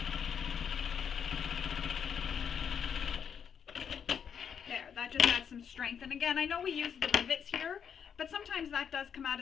There, that just adds some strength. And again, I know we use the rivets here, but sometimes that does come out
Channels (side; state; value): right; quieter; 7.5 dB